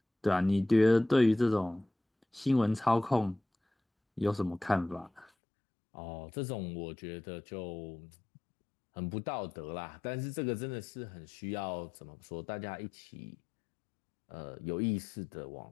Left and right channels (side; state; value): right; drops out; at 5.3 s